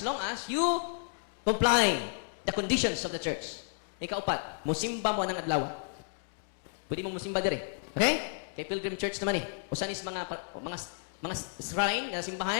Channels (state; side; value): silent; right; 56 dB below the other